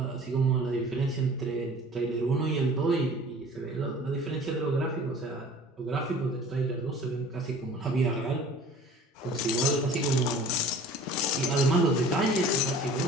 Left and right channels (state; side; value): normal; both; correlation 0.46